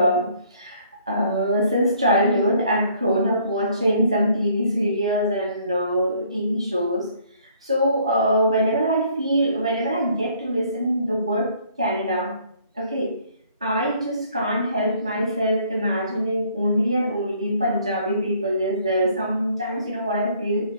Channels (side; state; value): both; inverted; correlation -0.62